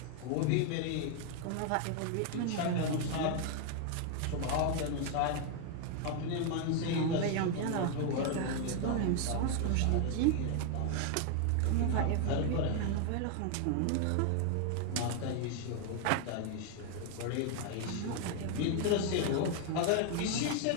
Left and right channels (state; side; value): different; both; correlation 0.00